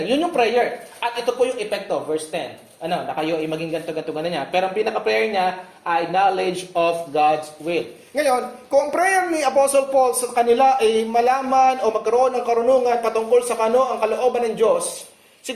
Yun yung prayer. At ito po yung epekto, verse 10. Na kayo ay maging ganto-ganto niya. Pero ang pinaka-prayer niya ay knowledge of God's will. Ngayon, kung prayer ni Apostle Paul sa kanila ay malaman o magkaroon ng karunungan patungkol sa ang kalooban ng Diyos,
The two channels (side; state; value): both; identical; correlation 1.00